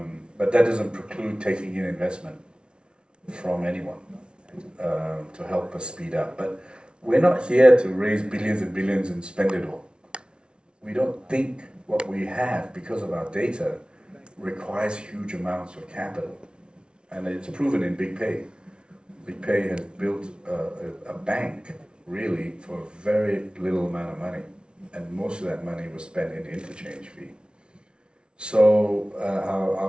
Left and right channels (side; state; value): left; late; 0.056 ms